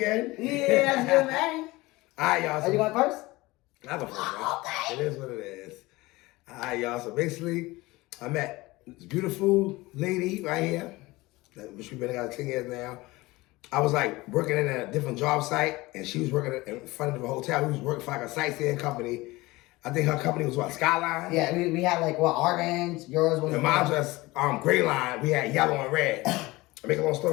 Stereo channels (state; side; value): quieter; right; 20.8 dB